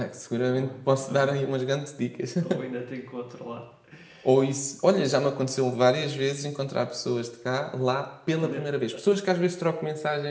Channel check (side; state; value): both; identical; correlation 1.00